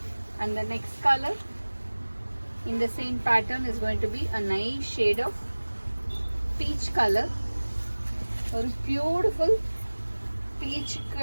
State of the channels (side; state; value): both; inverted; correlation -1.00